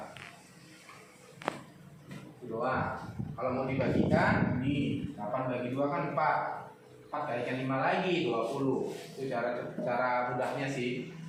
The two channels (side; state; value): both; identical; correlation 1.00